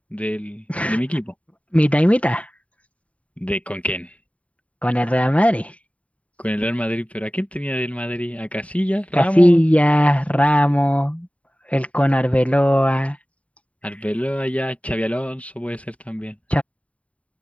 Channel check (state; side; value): late; right; 0.066 ms